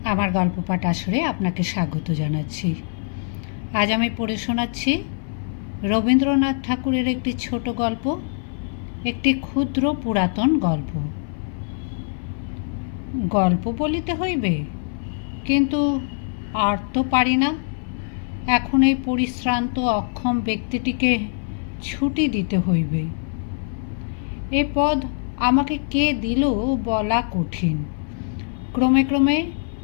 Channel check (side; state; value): right; silent; 59 dB below the other